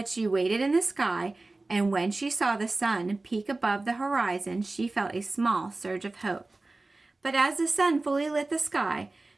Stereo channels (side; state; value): left; quieter; 3.2 dB